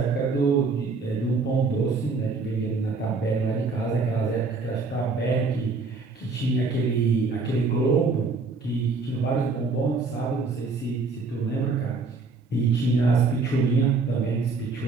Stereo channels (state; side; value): quieter; left; 4.2 dB